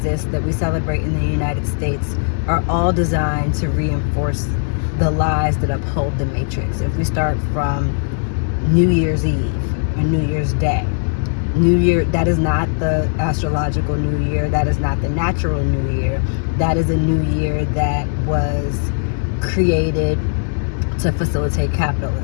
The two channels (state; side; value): silent; right; digital silence